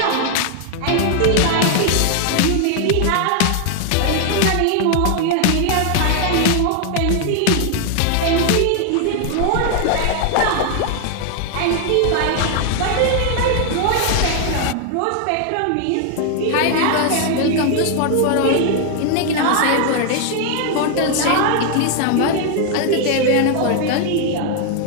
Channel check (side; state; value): both; different; correlation 0.00